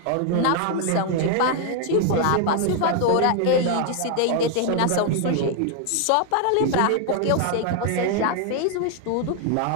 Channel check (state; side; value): different; both; correlation 0.00